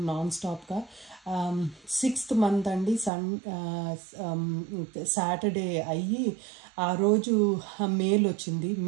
నాన్ స్టాప్గా. 6th month అండి, సాటర్డే అయ్యి ఆ రోజు మెయిల్ వచ్చింది.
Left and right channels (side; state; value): left; drops out; at 3.1 s